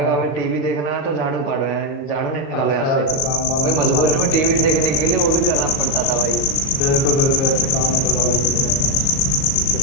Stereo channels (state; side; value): late; right; 37 ms